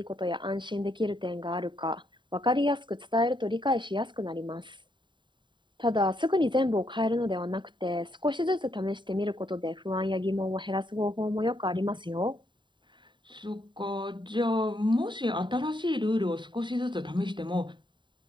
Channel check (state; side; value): late; left; 0.23 ms